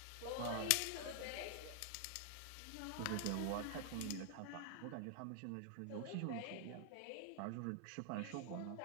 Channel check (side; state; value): both; different; correlation 0.00